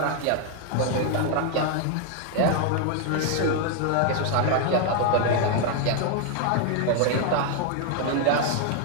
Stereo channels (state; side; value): different; both; correlation 0.00